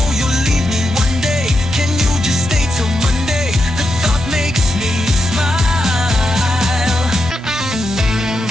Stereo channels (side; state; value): both; normal; correlation 0.86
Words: you'll leave me one day. Can you just stay till Monday? The thought makes me smile.